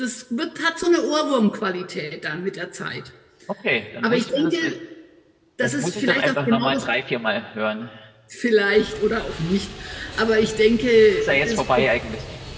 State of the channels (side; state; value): both; identical; correlation 1.00